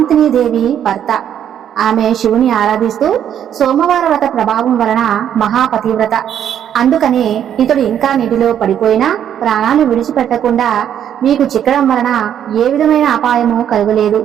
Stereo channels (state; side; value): quieter; left; 9.6 dB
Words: దేవి భర్త. ఆమె శివుని ఆరాధిస్తూ సోమవార వ్రత ప్రభావం వలన మహాపతివ్రత. అందుకనే ఇతడు ఇంకా నీటిలో పడిపోయినా ప్రాణాలు విడిచిపెట్టకుండా మీకు చిక్కడం వలన ఏ విధమైన అపాయము కలగలేదు